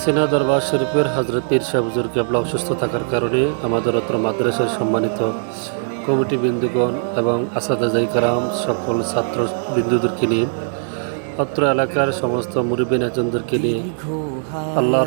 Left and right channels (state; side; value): silent; left; digital silence